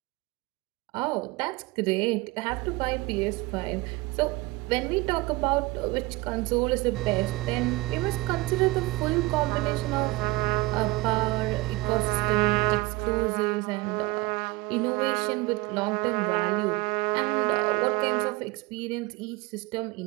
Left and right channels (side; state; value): left; quieter; 21.9 dB